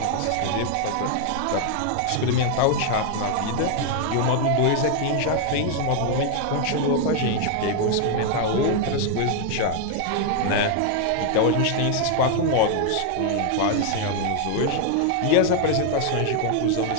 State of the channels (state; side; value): different; both; correlation 0.00